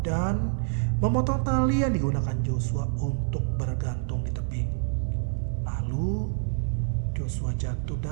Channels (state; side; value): silent; left; digital silence